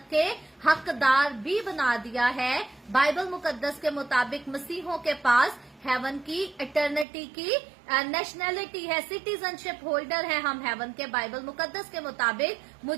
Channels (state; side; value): drops out; left; at 7.1 s